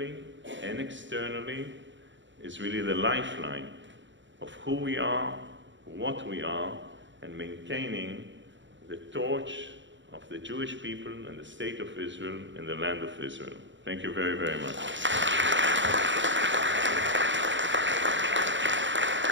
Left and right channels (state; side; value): late; left; 0.54 ms